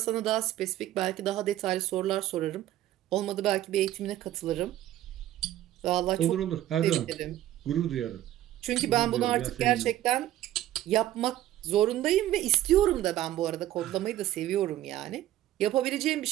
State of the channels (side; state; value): left; quieter; 13.6 dB